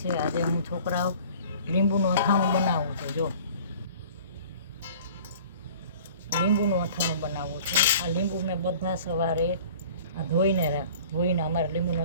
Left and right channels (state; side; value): inverted; both; correlation -0.47